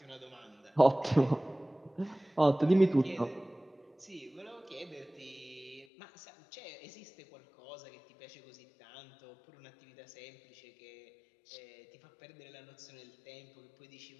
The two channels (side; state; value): right; drops out; at 5.9 s